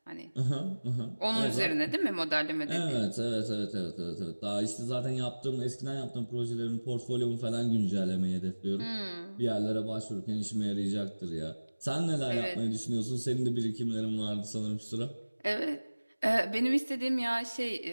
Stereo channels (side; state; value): both; inverted; correlation -1.00